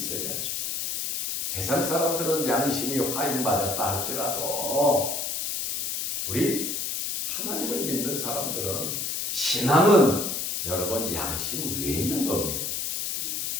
세상 사람들은 양심이 화인 맞았다 할지라도 우리 하나님을 믿는 사람들은, 신앙은 여러분 양심 위에 있는 겁니다.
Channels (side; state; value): left; noise; hiss, 2 dB below the sound